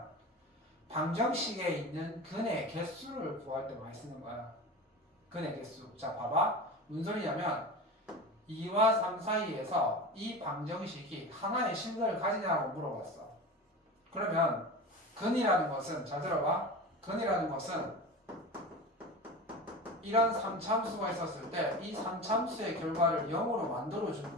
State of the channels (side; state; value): both; normal; correlation 0.30